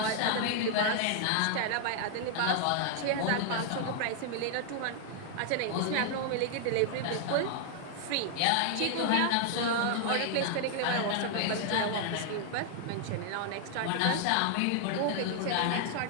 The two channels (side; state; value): both; different; correlation 0.00